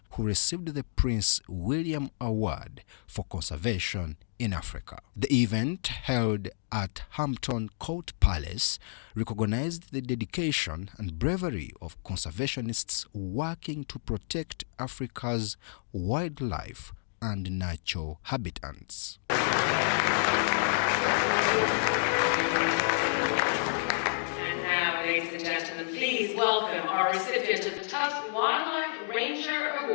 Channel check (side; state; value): right; silent; digital silence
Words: who received the Prince William Award for Conservation in Africa. The event, held at Hampton Court Palace, recognized the dedication and bravery of conservationists working to protect Africa's wildlife and natural habitats. And now, ladies and gentlemen, please welcome our recipient of the Tusk Wildlife Ranger